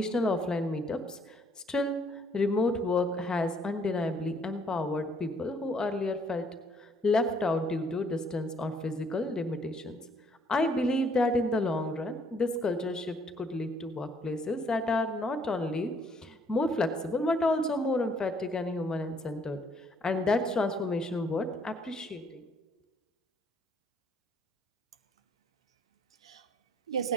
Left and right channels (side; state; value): both; normal; correlation 0.65